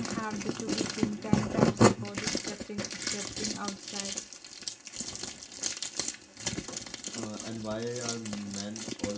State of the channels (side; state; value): both; identical; correlation 1.00